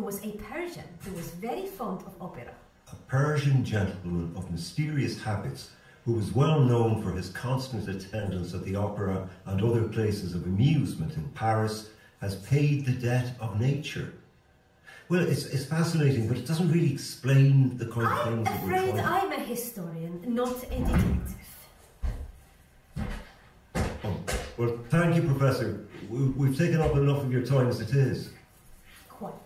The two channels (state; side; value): identical; both; correlation 1.00